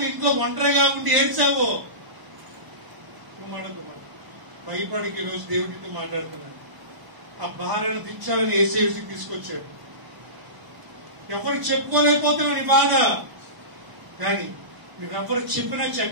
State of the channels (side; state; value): left; late; 1.0 ms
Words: ఇంట్లో ఒంటరిగా ఉండి ఏడ్చావో. కుమార కుమార్ భయపడికి ఈరోజు దేవుడితో మాట్లాడుతున్నాడు. ఆ భారాన్ని దించాలని ఏసీకి తీసుకొచ్చాడు. ఎవరికి చెప్పుకోలేకపోతున్నావు నీ బాధ. కానీ నువ్వెవరికి చెప్పినా